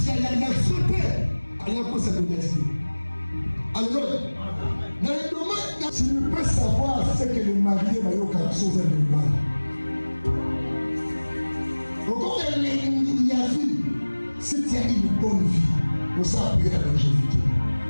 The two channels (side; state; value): both; inverted; correlation -1.00